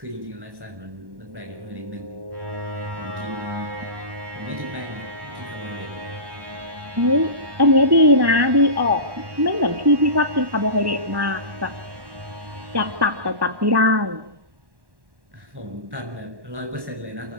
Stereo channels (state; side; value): late; left; 1.1 ms